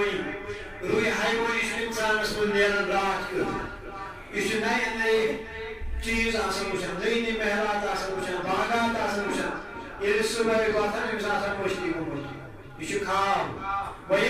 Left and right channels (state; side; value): identical; both; correlation 1.00